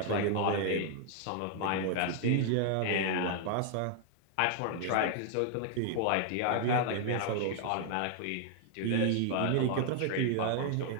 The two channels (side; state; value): both; different; correlation 0.00